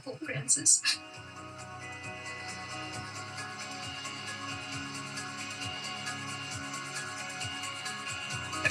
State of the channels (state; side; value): identical; both; correlation 1.00